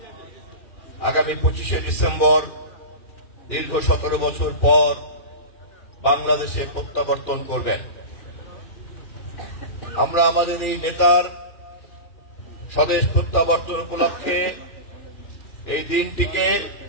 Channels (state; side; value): late; right; 2.4 ms